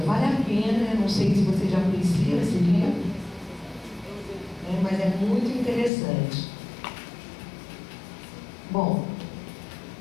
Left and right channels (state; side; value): drops out; right; at 5.9 s